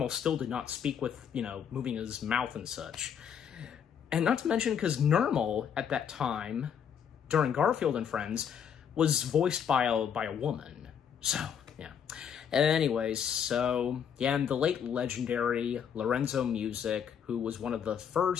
still did not speak with, you know, moving his mouth and such. And not to mention, because Normal, at that time, during Garfield and Friends, was voiced by a woman. So, yeah. Anyways, so, yeah, and the late legendary Lorenzo Music, who was one of the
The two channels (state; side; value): quieter; right; 8.0 dB